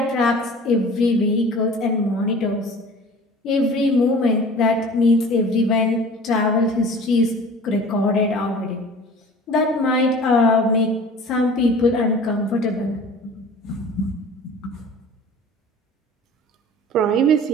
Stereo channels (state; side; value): normal; both; correlation 0.43